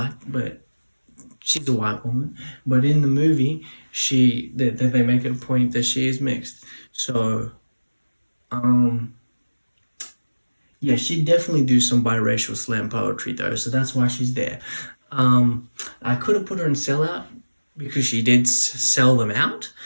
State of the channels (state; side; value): inverted; both; correlation -1.00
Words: but she's a white woman. But in the movie, they make it a point that she is mixed. So, yeah, she'd definitely do some biracial slam poetry though, so that's why she's there. I could have put her in Sellout because she did sell them out,